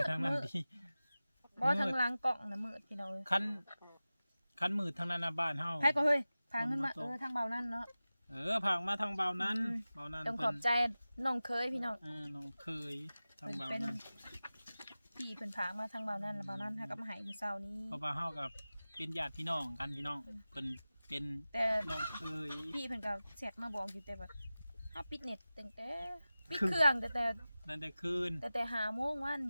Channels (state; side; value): inverted; both; correlation -0.96